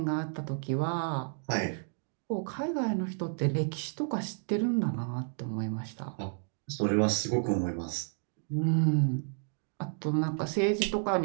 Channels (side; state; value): left; silent; 57 dB below the other